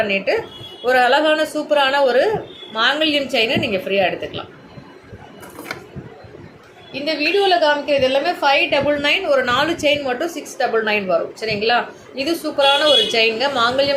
ஒரு அழகான சூப்பரான ஒரு மாங்கல்யம் செயினை நீங்கள் ஃப்ரீயாக எடுத்துக்கலாம். இந்த வீடியோவில் காமிக்கிறது எல்லாமே 599, ஒரு 4 செயின் மட்டும் 699 வரும், சரிங்களா? இது சூப்பரான ஒரு செயின்ங்க,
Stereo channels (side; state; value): both; identical; correlation 1.00